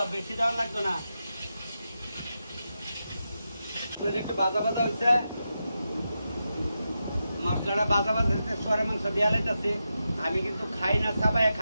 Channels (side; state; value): both; inverted; correlation -0.88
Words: বেশি দেওয়ার লাগতো না। একটু বাজা বাজা হয়েছে, মশলাটা বাজা বাজা হয়েছে, শুয়ারের মাংস দেওয়া লাইতেছে। আমি কিন্তু খাই না, সবাই